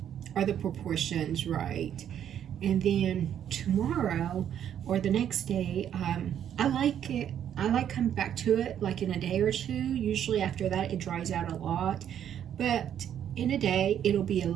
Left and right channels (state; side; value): quieter; left; 9.7 dB